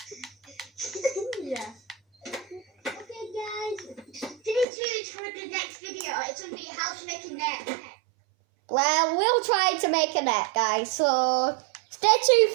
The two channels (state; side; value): drops out; left; at 4.7 s